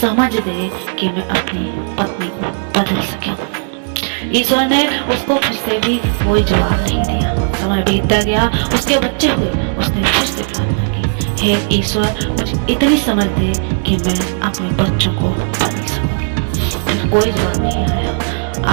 दे कि मैं अपनी पत्नी को बदल सकूं। ईश्वर ने उसको फिर से भी कोई जवाब नहीं दिया। समय बीतता गया, उसके बच्चे हुए, उसने फिर से प्रार्थना की, हे ईश्वर, मुझे इतनी समझ दे कि मैं अपने बच्चों को बदल सकूं। फिर कोई जवाब नहीं आया।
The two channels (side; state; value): left; silent; 61 dB below the other